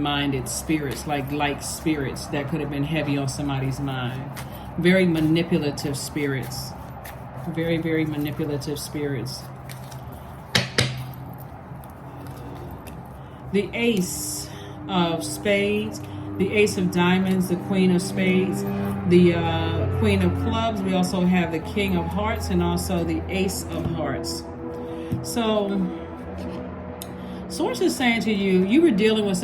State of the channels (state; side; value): identical; both; correlation 1.00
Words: spirits, like spirits that could have been heavy on somebody's mind. Very manipulative spirits. Very, very manipulative spirits. The Ace of Spades, the Ace of Diamonds, the Queen of Spades, the Queen of Clubs. We also have the King of Hearts and also the Ace of Hearts. So, Source is saying to you, you were dealing with